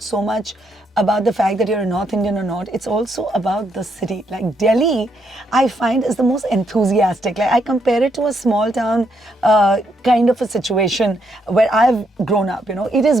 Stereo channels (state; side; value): normal; both; correlation 0.76